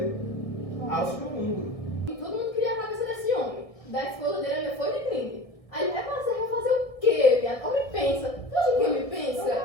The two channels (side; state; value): right; late; 1.6 ms